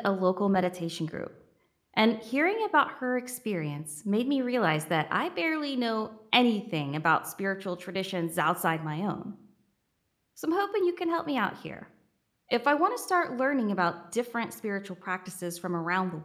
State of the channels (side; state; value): both; identical; correlation 1.00